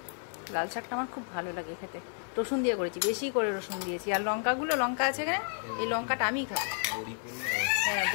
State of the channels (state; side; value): silent; right; 57 dB below the other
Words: লাল শাকটা আমার খুব ভালো লাগে খেতে, রসুন দিয়ে করেছি, বেশি করে রসুন দিয়েছি। আর লঙ্কা আছে এখানে, এই লঙ্কাটা আমিই খাবো। হ্যাঁ,